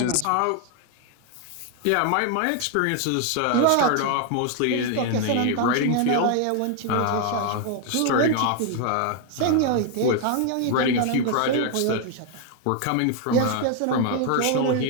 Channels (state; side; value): different; both; correlation 0.00